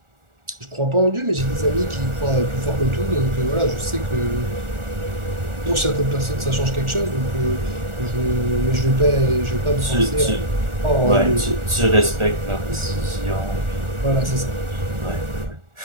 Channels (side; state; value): left; late; 1.4 ms